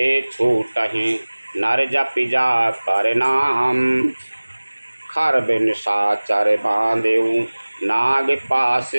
छूटहि, नर जपि जा कर नाम। खर बिन साचर बांधेऊ, नाग पास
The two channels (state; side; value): inverted; both; correlation -1.00